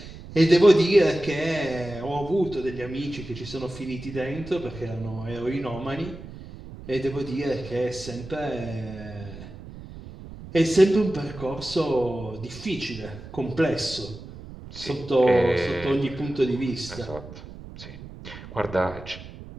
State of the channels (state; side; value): noise; right; rumble, 14 dB below the sound